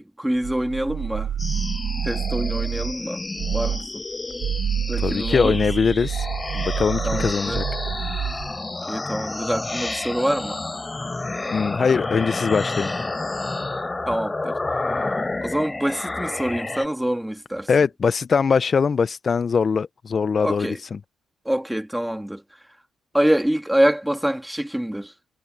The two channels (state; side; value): normal; both; correlation 0.90